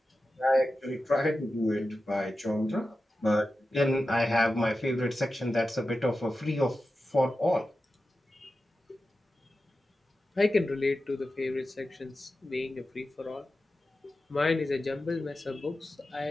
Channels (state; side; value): normal; both; correlation 0.93